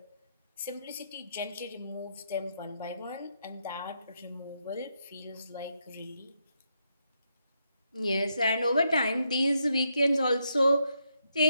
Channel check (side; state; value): both; inverted; correlation -0.79